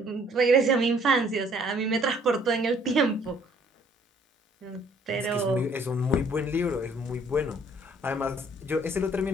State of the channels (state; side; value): normal; both; correlation 0.60